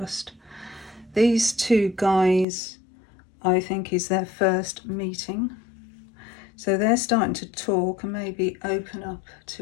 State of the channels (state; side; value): drops out; right; at 2.5 s